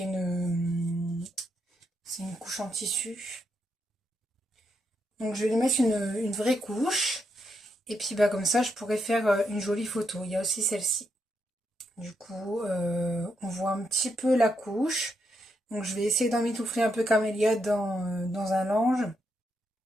couche en tissu. Donc je vais lui mettre une vraie couche et puis bah comme ça je pourrais faire une jolie photo. Il y a aussi celle-ci. Du coup on voit un petit peu la couche. Donc je vais essayer d'emmitoufler un peu Camélia dans un linge.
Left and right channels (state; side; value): normal; both; correlation 0.81